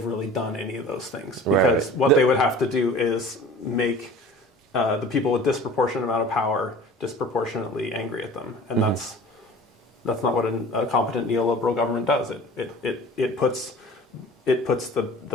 really done any of those things, because what they would have to do is make the people with disproportionate amount of power disproportionately angry at them, and that's not what a competent neoliberal government does. It puts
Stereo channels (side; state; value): both; normal; correlation 0.43